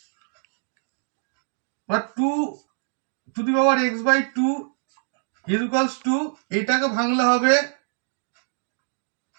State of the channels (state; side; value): silent; left; digital silence